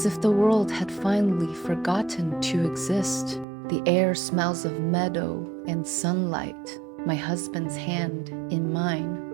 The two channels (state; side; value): drops out; left; at 3.5 s